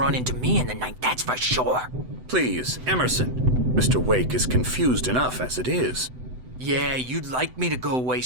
into me in the night, that's for sure. Please, Emerson. Mr. Wake is confused enough as it is. Yeah, you'd like me to go away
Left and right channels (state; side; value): late; left; 7.9 ms